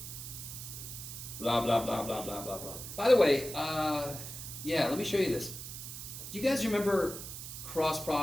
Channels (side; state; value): right; noise; hiss, 9 dB below the sound